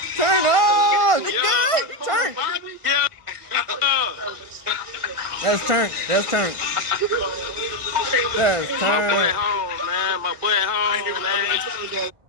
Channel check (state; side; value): late; left; 1.4 ms